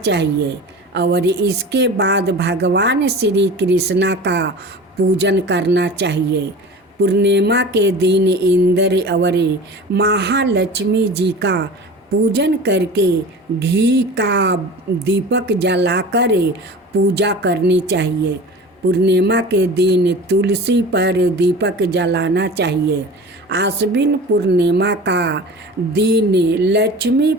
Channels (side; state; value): both; normal; correlation 0.37